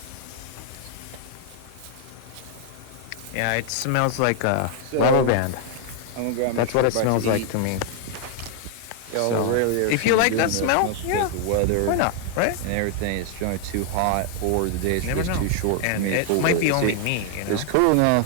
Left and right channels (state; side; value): different; both; correlation 0.00